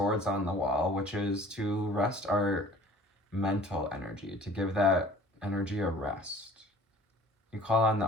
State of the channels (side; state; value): both; normal; correlation 0.49